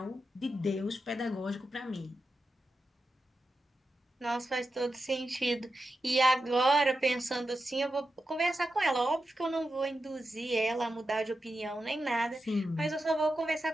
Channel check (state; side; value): normal; both; correlation 0.89